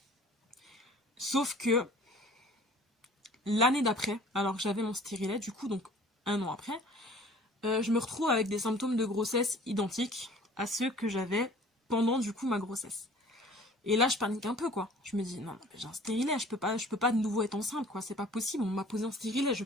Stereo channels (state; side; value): normal; both; correlation 0.49